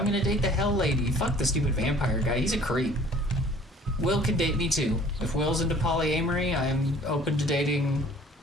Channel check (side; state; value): both; normal; correlation 0.52